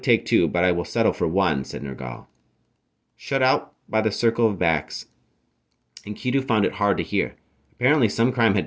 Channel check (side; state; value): both; identical; correlation 1.00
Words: take two, but I will settle for one," said Nergal. Shut out by the circle of backs, Enkidu found it hard to hear. Apparently some crime had